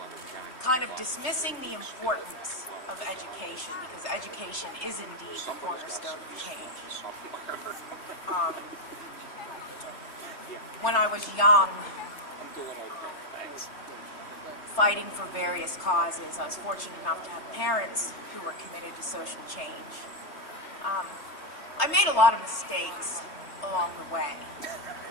kind of dismissing the importance of education, because education is indeed the cornerstone of change. When I was young, fighting for various causes, I was fortunate enough to have parents who were committed to social change. I made a lot of mistakes along the way.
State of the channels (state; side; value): late; right; 3.3 ms